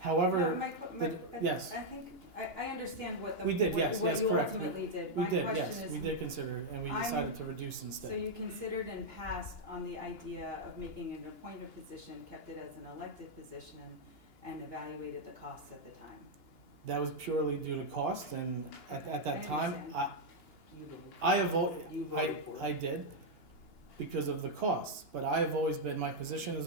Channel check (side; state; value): right; late; 2.9 ms